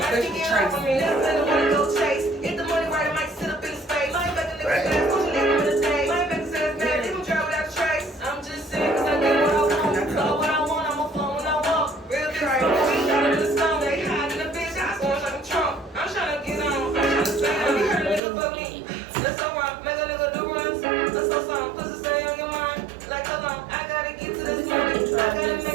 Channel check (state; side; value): drops out; left; at 18.2 s